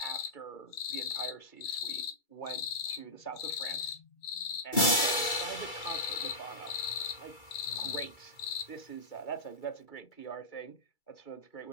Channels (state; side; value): late; right; 2.3 ms